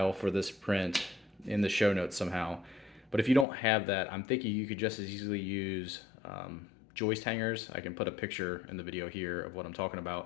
for this print in the show notes somehow. But if you don't have that, I'm thinking you could just as easily use joist hangers. I can put a picture in the video here of what I'm talking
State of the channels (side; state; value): right; drops out; at 3.5 s